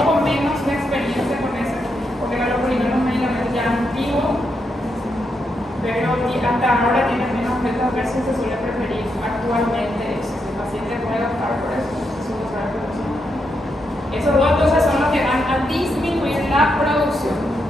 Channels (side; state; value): both; normal; correlation 0.82